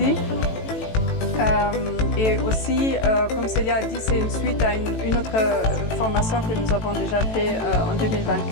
Et aussi, comme Célia a dit, c'est une suite à une autre formation que nous avons déjà fait en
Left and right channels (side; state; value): right; late; 18 ms